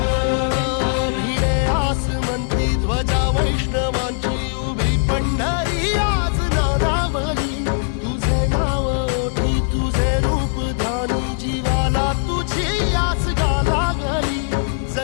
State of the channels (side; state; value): right; silent; 56 dB below the other